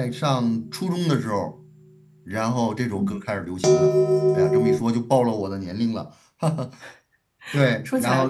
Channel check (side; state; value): both; identical; correlation 1.00